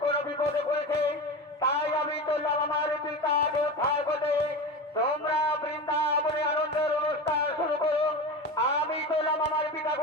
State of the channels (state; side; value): normal; both; correlation 0.26